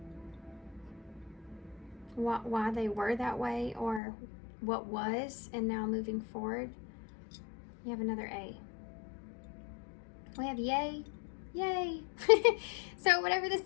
Why they were that way, or what was, and now moving forward. You have another A. We have yay. Yay. So whatever this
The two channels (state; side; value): drops out; right; at 4.0 s